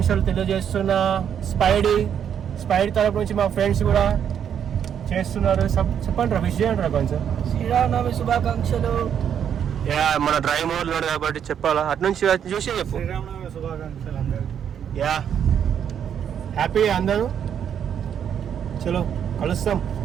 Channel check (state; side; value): quieter; left; 8.6 dB